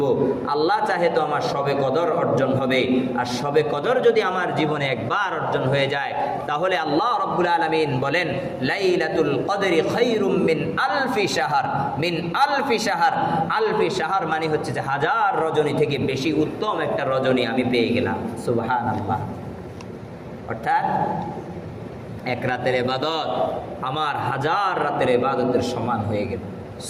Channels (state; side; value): identical; both; correlation 1.00